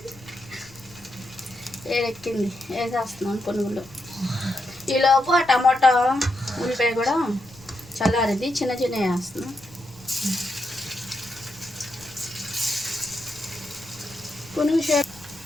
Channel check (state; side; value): noise; left; rumble, 23 dB below the sound